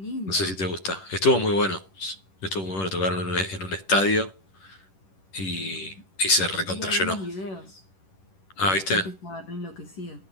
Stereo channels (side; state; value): right; late; 11 ms